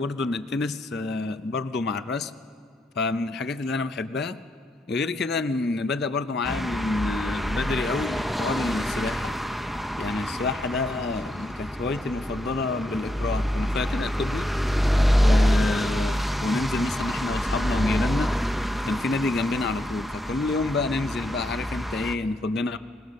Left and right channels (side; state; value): both; normal; correlation 0.79